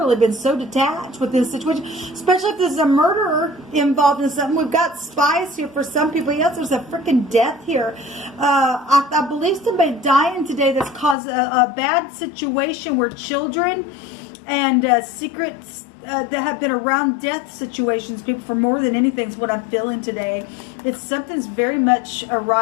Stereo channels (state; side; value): drops out; right; at 11.2 s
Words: been so detached with this situation, especially if there's a murderer involved in something. We've got spies here for some people. Yes, there's a freaking death here. I believe somebody dying today that's caused a bad situation where children and secrets that have been around death situations, people, for more than anything is what I'm feeling today. It's something's very much